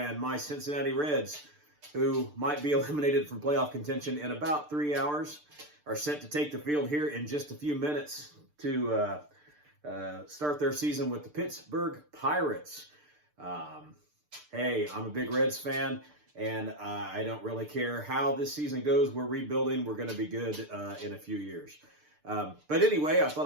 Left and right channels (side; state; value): left; late; 6.7 ms